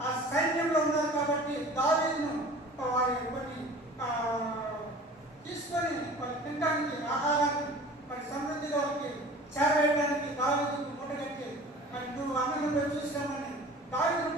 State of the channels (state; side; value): normal; both; correlation 0.43